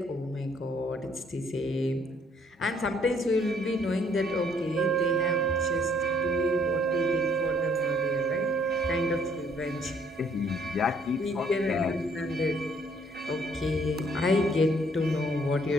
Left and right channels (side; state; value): both; normal; correlation 0.64